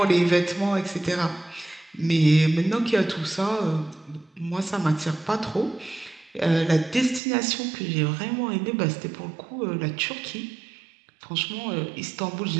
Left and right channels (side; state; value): left; drops out; at 7.2 s